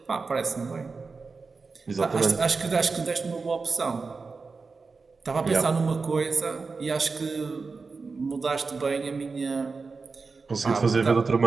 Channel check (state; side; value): quieter; left; 4.4 dB